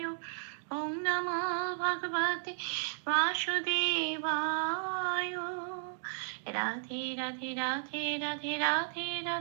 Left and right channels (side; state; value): left; silent; digital silence